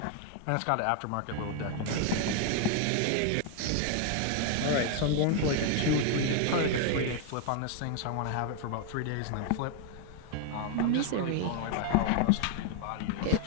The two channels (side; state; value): both; different; correlation 0.00